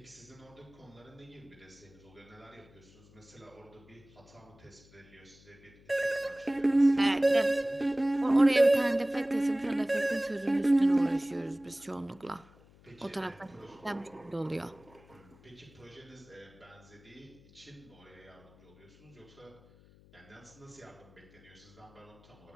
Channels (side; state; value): left; noise; hum, 26 dB below the sound